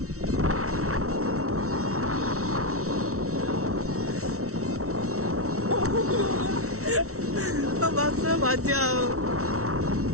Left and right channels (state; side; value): late; left; 0.64 ms